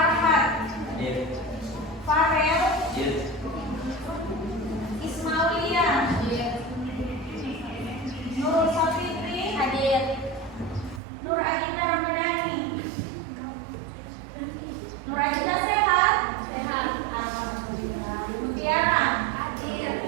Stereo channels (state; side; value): drops out; left; at 11.0 s